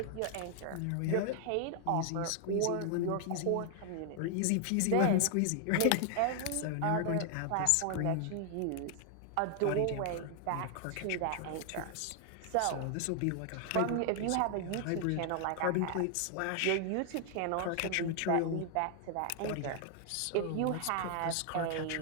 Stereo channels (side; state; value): both; different; correlation 0.00